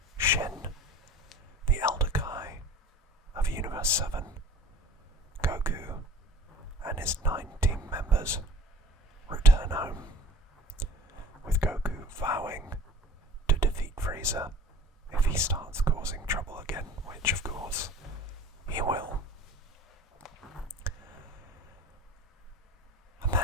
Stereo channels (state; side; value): normal; both; correlation 0.42